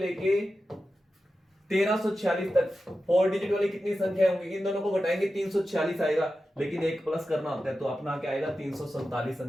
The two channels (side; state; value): both; normal; correlation 0.92